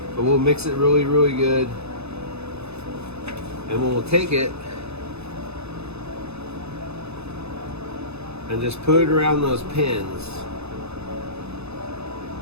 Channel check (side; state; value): left; late; 0.80 ms